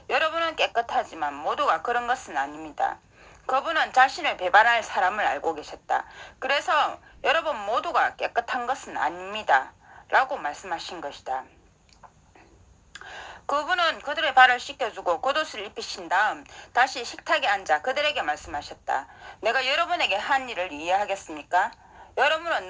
여러분은 깨끗하지만 모두가 그런 것은 아닙니다. 그분은 자신을 배반할 사람을 알고 계셨다. 그래서 여러분 모두가 깨끗한 것은 아닙니다. 라고 말씀하신 것이다. 그분은 그들의 발을 씻겨주고 겉옷을 입히신 다음 다시 식탁에 앉아 그들에게 말씀하셨다. 내가 여러분에게 한 일을 이해하겠습니까? 여러분은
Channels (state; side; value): identical; both; correlation 1.00